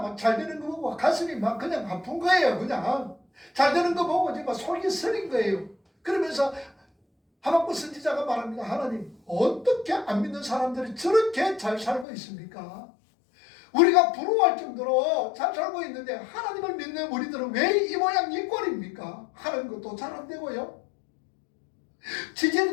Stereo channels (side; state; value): right; drops out; at 12.1 s